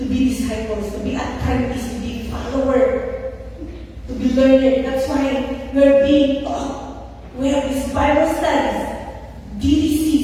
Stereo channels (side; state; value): both; identical; correlation 1.00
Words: be disciples, to be apprentices, to be follower, to be learner. That's why we're being taught. We have these Bible studies,